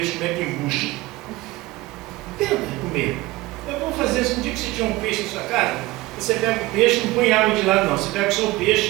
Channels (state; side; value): quieter; left; 19.2 dB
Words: como é que embucha? Tenta comer. Eu vou fazer isso. Um dia que você tiver um peixe na sua casa, você pega o peixe, não põe água de lado não. Você pega só o